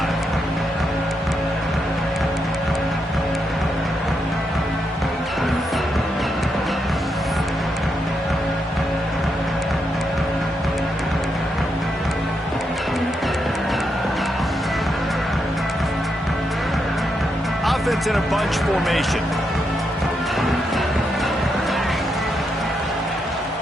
Offense in a bunch formation.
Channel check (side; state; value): both; normal; correlation 0.82